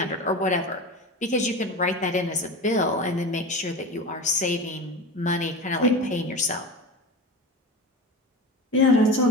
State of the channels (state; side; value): normal; both; correlation 0.28